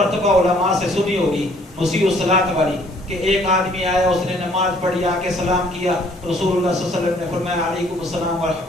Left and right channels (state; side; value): normal; both; correlation 0.60